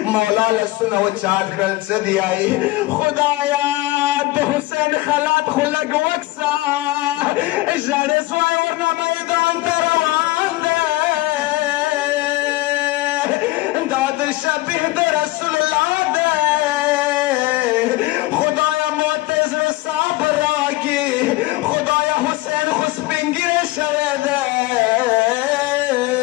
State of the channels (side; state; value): right; quieter; 19.0 dB